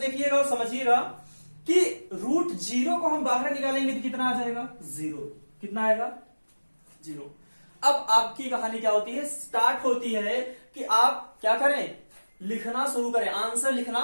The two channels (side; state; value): both; inverted; correlation -1.00